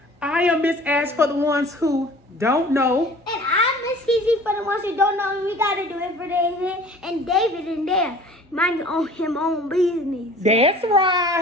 I am Miss Ash for the ones who don't know. And I'm Miss Cece for the ones who don't know. And we gotta do it for David. And David in there. Mind him own business. That's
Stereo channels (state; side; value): normal; both; correlation 0.46